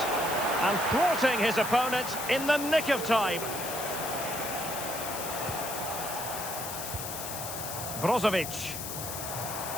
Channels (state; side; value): noise; left; hiss, 6 dB below the sound